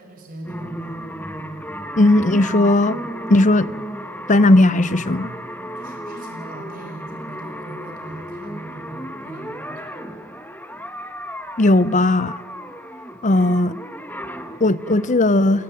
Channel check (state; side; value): normal; both; correlation 0.68